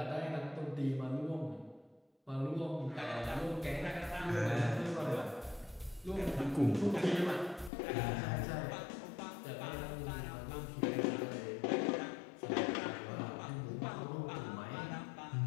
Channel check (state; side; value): drops out; right; at 7.7 s